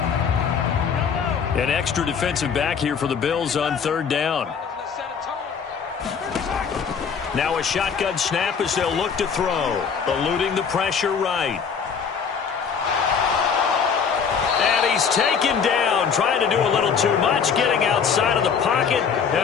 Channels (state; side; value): quieter; right; 6.5 dB